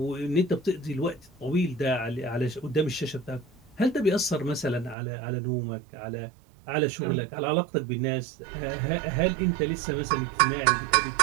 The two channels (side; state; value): left; drops out; at 5.0 s